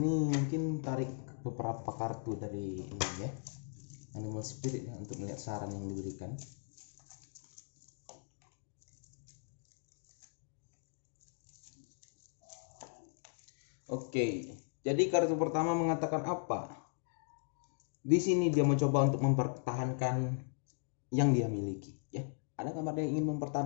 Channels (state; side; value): silent; right; digital silence